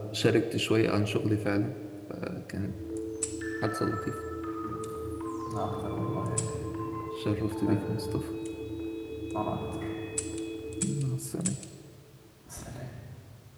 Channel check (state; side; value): identical; both; correlation 1.00